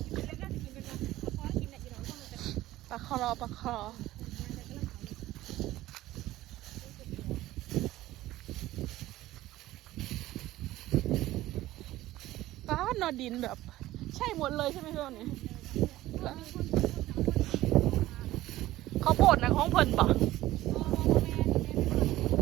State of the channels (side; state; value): left; quieter; 15.9 dB